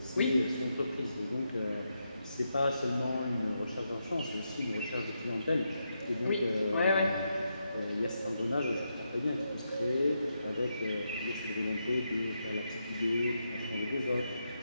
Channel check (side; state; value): both; inverted; correlation -0.84